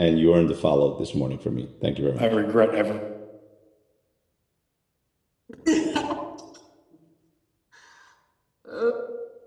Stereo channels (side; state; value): both; identical; correlation 1.00